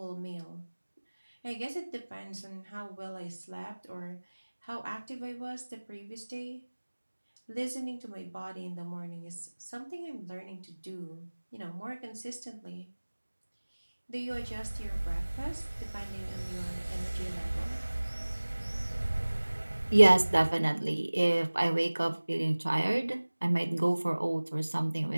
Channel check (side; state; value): both; inverted; correlation -1.00